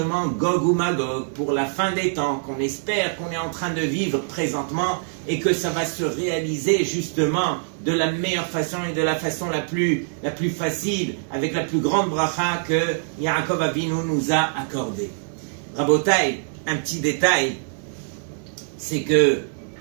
Gog ou Magog, pour la fin des temps, qu'on espère qu'on est en train de vivre présentement et que ça va se réaliser justement de la meilleure façon et de la façon la plus facile, avec la plus grande bracha que Yaakov Avinu nous a accordée. Rabotai, un petit détail, c'est que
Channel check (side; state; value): left; silent; digital silence